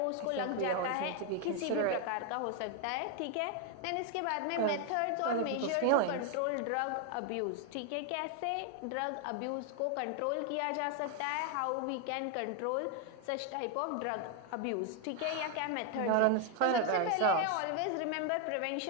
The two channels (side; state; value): both; different; correlation 0.01